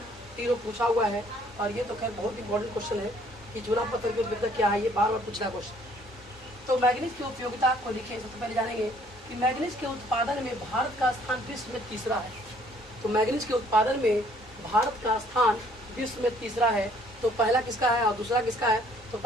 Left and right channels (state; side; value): normal; both; correlation 0.61